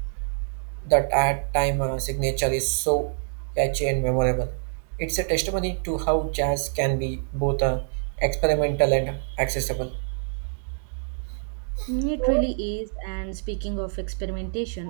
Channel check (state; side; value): silent; left; digital silence